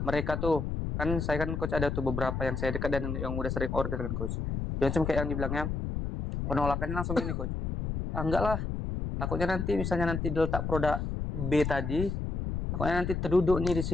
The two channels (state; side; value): noise; left; rumble, 3 dB below the sound